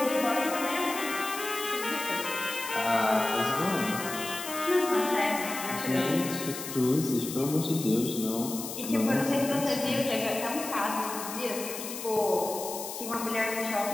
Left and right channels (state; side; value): noise; left; hiss, 8 dB below the sound